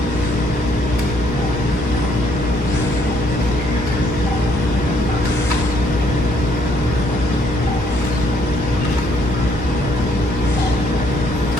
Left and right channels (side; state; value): right; noise; rumble, 13 dB below the sound